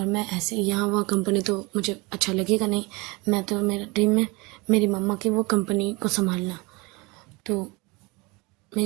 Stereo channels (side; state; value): left; quieter; 26.2 dB